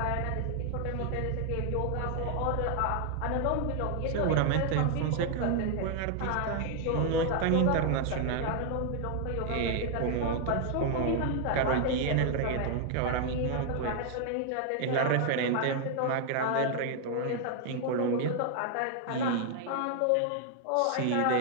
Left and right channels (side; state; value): both; different; correlation 0.00